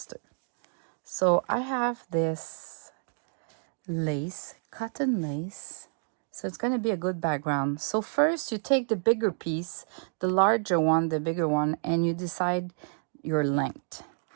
So I have this lace, cotton lace. So it's going to be a good background. So first you take the bigger piece, the larger one, the bigger one, and you decide your length.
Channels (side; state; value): left; silent; digital silence